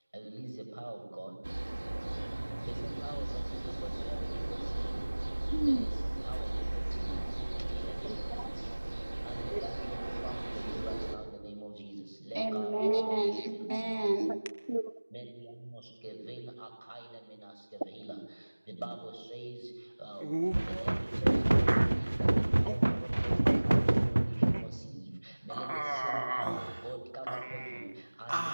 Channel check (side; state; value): both; inverted; correlation -1.00